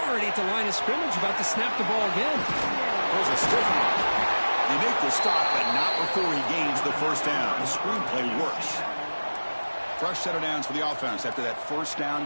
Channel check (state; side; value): inverted; both; correlation -1.00